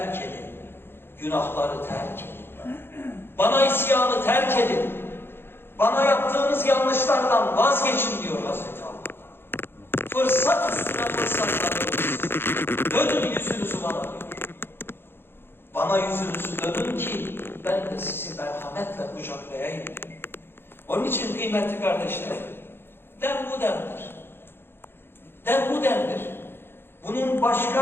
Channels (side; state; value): right; late; 0.11 ms